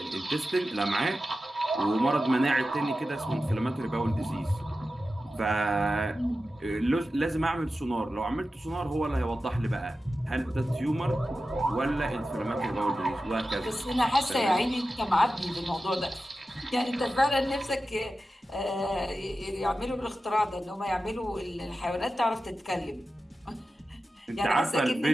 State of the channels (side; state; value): both; normal; correlation 0.93